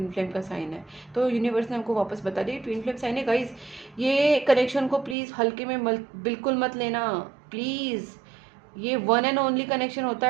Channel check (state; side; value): drops out; left; at 5.2 s